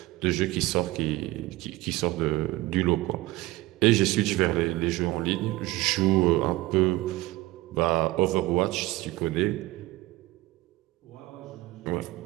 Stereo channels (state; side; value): quieter; left; 18.9 dB